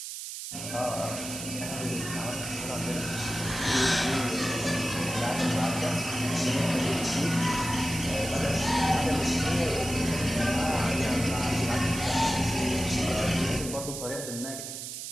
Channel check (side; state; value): right; noise; hiss, 7 dB below the sound